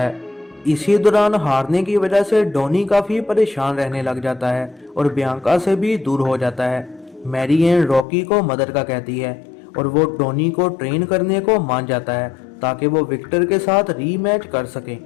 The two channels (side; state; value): right; drops out; at 8.1 s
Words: इसी दौरान हारने की वजह से डोनी काफ़ी परेशान रहने लग जाता है और बियांका से भी दूर हो जाता है। मैरी एन रॉकी को मदद का कहती है और वो डोनी को ट्रेन करने को मान जाता है ताकि वो विक्टर के साथ रीमैच कर सके।